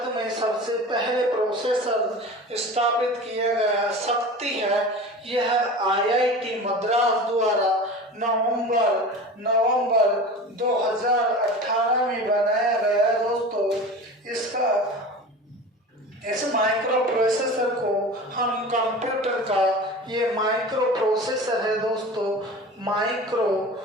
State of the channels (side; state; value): both; normal; correlation 0.34